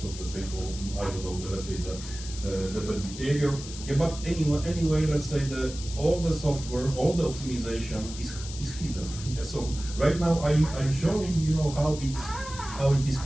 of let's say, I don't know, the bad behavior. Yeah, but anyway, let's say all the software, all the optimization is hidden. Yeah, so right now I'm showing how it is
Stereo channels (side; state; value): left; noise; hiss, 12 dB below the sound